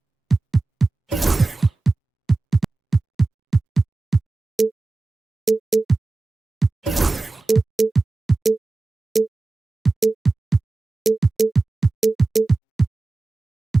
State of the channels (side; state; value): left; quieter; 3.3 dB